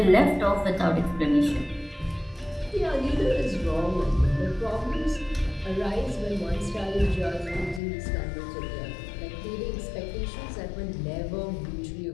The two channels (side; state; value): right; drops out; at 7.8 s